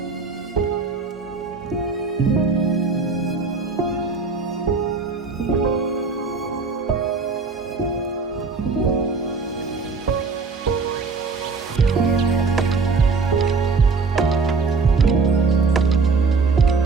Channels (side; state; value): left; quieter; 4.5 dB